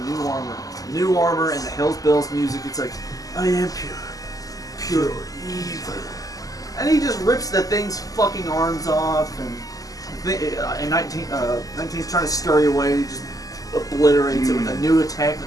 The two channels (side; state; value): right; late; 0.17 ms